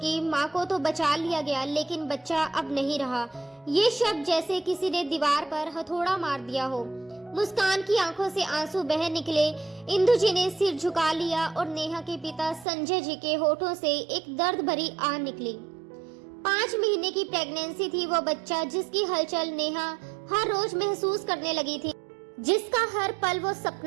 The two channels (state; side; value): drops out; left; at 12.7 s